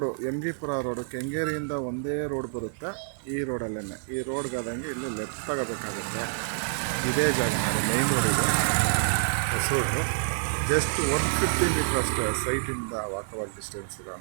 ಎಮ್ಗಿಪುರ ರೋಡು, ಕೆಂಗೇರಿಯಿಂದ ಒಂದೇ ರೋಡ್ ಬರುತ್ತೆ. ಈ ರೋಡಲ್ಲೇ, ಈ ರೋಡ್ಗಾದಂಗೆ ಇಲ್ಲಿ ಲೆಫ್ಟ್ ತಗೋಬೇಕಾಗುತ್ತೆ. ಇದೇ ಜಾಗ ನೋಡಿ, ಮೈನ್ ರೋಡ್ ಇದೆ, ಹೊಸ ರೋಡು. ಜಸ್ಟ್ 150 ಮೀಟರ್ ಅಷ್ಟೇ ಸೈಟಿಂದ ವಾಕಬಲ್ ಡಿಸ್ಟೆನ್ಸ್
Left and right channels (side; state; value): left; silent; digital silence